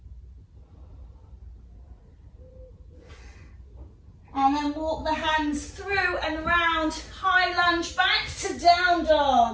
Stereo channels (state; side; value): identical; both; correlation 1.00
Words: And then walk the hands through and round. High lunge back to down